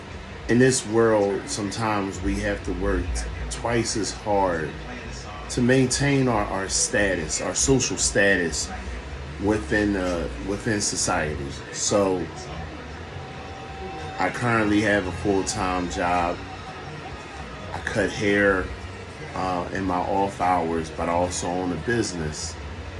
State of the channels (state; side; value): identical; both; correlation 1.00